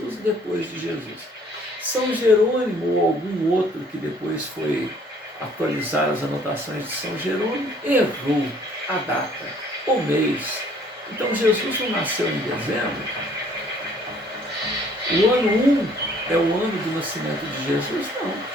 e depois de Jesus. São Jerônimo ou algum outro que depois foi atualizar as anotações de São Jerônimo, errou a data, o mês. Então Jesus não nasceu em dezembro. O ano 1 é o ano do nascimento de Jesus? Não.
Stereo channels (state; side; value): normal; both; correlation 0.59